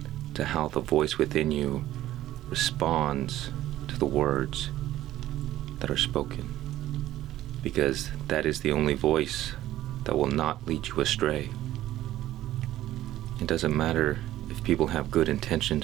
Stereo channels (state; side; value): quieter; left; 14.1 dB